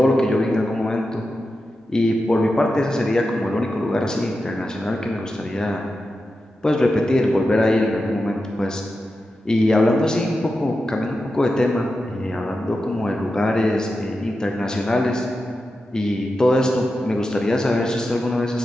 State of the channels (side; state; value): both; normal; correlation 0.90